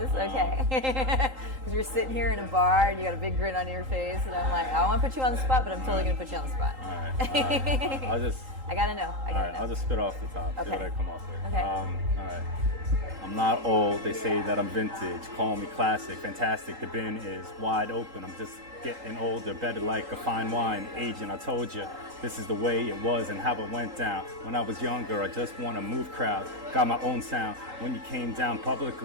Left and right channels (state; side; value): late; left; 3.8 ms